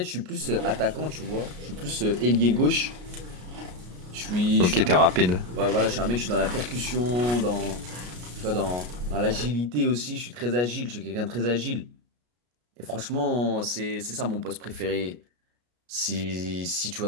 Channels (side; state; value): left; late; 33 ms